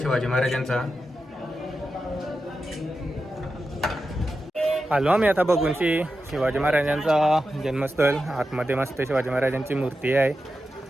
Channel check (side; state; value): both; normal; correlation 0.90